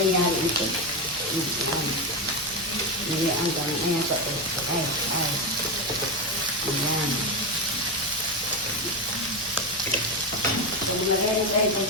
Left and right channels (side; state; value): left; noise; hum, 28 dB below the sound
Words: yan ito. Niliang ka. Ayan pa ito. Ay. Ayan. So, lagyan tayo itong